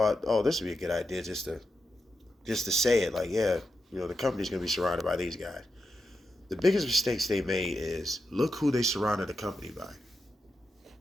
oh, this would be a good idea just to say it, like, yeah, the company's gonna be surrounded by these guys. The biggest mistakes they made is look who they surrounded the company by.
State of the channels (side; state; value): both; normal; correlation 0.87